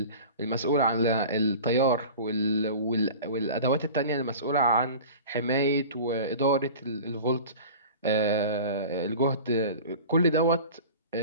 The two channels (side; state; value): both; inverted; correlation -0.38